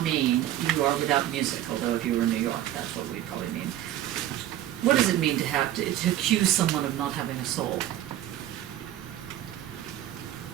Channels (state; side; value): quieter; left; 12.9 dB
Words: mean you are without music, although if you were in New York, that's what we'd probably mean. What does it mean to accuse someone of not having a soul?